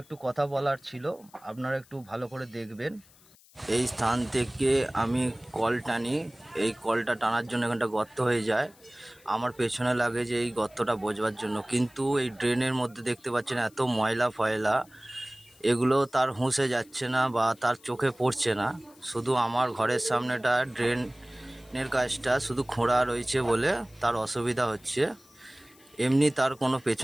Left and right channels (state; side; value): noise; left; hiss, 27 dB below the sound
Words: একটু কথা বলার ছিল, আপনারা একটু ভালো করে দেখবেন। এই স্থান থেকে আমি কল টানি, এই কলটা টানার জন্য এখানটা গর্ত হয়ে যায়। আমার পেছনে লাগে যে এই গর্তটা বোঝবার জন্য, কিন্তু এই ড্রেনের মধ্যে দেখতে পাচ্ছেন এত ময়লা ফয়লা, এগুলো তার হুঁসে যাচ্ছে না বা তার চোখে পড়ছে না। শুধু আমার ঘরের সামনেটা ড্রেনের কাজটা শুধু খোঁড়া রয়েছে বলে তার অসুবিধা হচ্ছে। এমনি তার কোনো